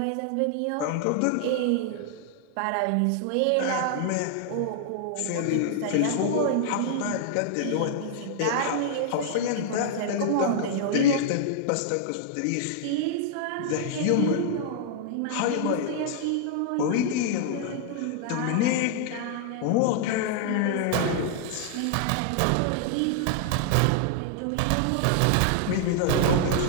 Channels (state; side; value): different; both; correlation -0.01